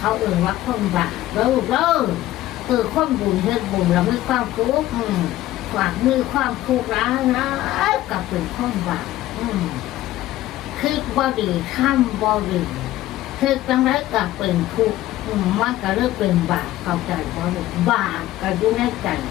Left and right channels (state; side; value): quieter; right; 15.2 dB